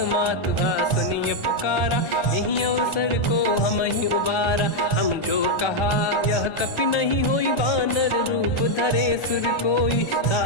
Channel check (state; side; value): late; right; 1.4 ms